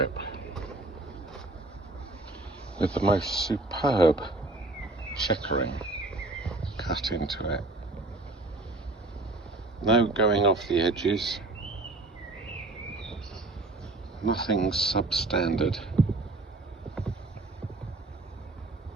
with the most superb checkering cut into it. No going off the edges, nothing substandard.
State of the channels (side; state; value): left; quieter; 3.0 dB